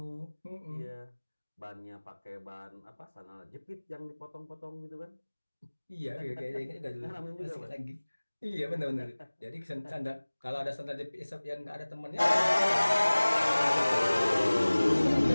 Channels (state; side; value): inverted; both; correlation -1.00